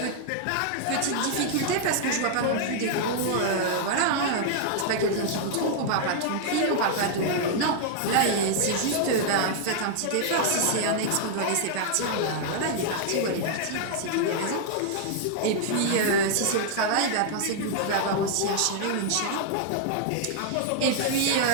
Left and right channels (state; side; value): different; both; correlation -0.01